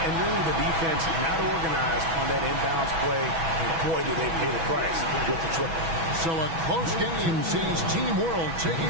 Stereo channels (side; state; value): left; late; 6.1 ms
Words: really the defense not organized on that inbounds play. And boy, did they pay the price with the triple. So a close game sees Team World